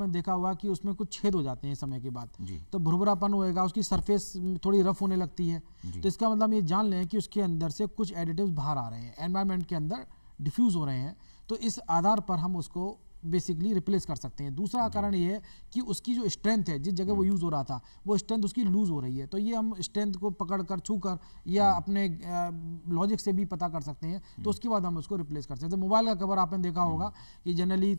देखा होगा कि उसमें कुछ छेद हो जाते हैं समय के बाद, तो भुरभुरापन होएगा, उसकी सरफेस थोड़ी रफ होने लगती है। तो इसका मतलब ये जान लें कि उसके अंदर से कुछ एडिटिव्स बाहर आ रहे हैं, एनवायरनमेंट के अंदर डिफ्यूज़ हो रहे हैं। तो इस आधार पर हम उसको बेसिकली रिप्लेस कर सकते हैं। दूसरा कारण ये है कि उसकी जो स्ट्रेंथ है, जिस जगह वो यूज़ हो रहा था वो स्ट्रेंथ उसकी लूज़ हो रही है, तो ये हम स्ट्रेंथ को पकड़ कर छू कर या अपने लॉजिक से भी पता कर सकते हैं, तो उसके बाद हम उसको रिप्लेस कर सकते हैं। जैसे मोबाइल का कवर आपने देखा होगा कि जनरली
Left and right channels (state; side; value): inverted; both; correlation -1.00